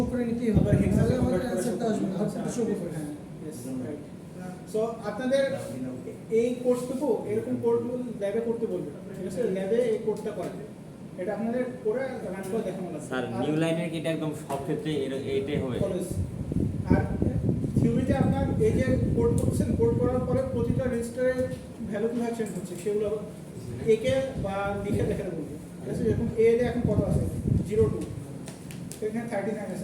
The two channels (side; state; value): both; identical; correlation 1.00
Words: করে নিতেই হবে, আবার হেক্সাতে তাহলে আমাদের convert করে অ্যান্সারটা আসবে, আউটপুটে শো করবে। হ্যাঁ, yes, right. So, আপনাদের এই কোর্সটুকু এরকম কোডগুলো ল্যাবে করতে বলবে, ঠিক আছে, ল্যাবে এই কোডটা করে, এটা আপনাদের করে রান করে দেখানো লাগবে। স্যার আর নিউ লাইনের কি এটা একদম সব ক্ষেত্রে এইটাই হবে? কলেজ আর থিওরিতে আপনার এই যে কোড করছেন, কোড করার পরে প্রতিটা রেজিস্টারের ভ্যালু কিভাবে চেঞ্জ হচ্ছে সেগুলো একে বা লিখে দেখে বলবে, ঠিক আছে, যেরকম এ এ এখন কত আছে 02, এখানে 39